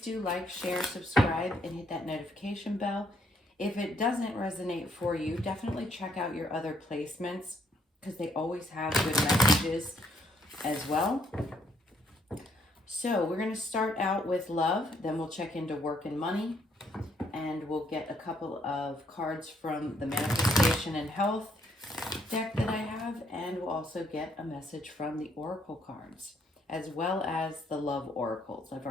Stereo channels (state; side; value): normal; both; correlation 0.70